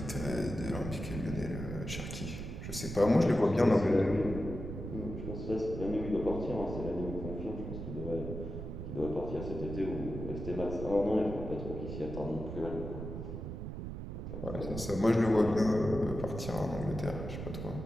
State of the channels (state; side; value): noise; right; rumble, 7 dB below the sound